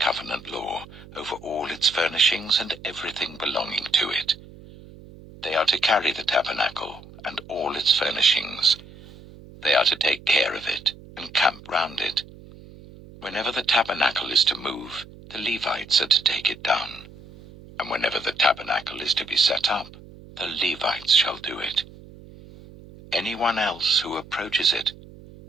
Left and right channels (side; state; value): right; noise; hum, 19 dB below the sound